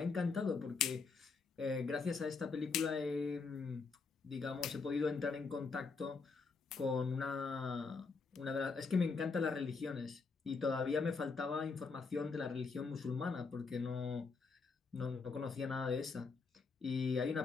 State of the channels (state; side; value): quieter; right; 4.7 dB